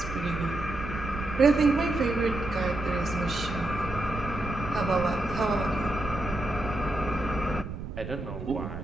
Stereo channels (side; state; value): right; noise; rumble, 8 dB below the sound